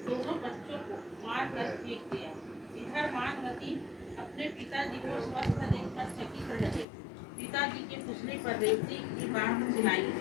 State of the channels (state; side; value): drops out; right; at 6.9 s